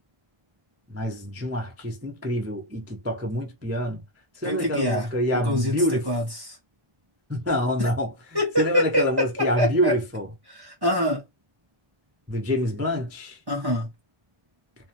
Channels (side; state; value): left; late; 1.1 ms